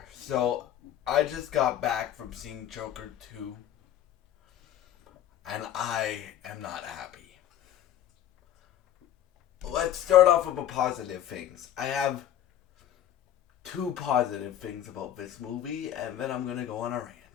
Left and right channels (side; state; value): right; quieter; 11.2 dB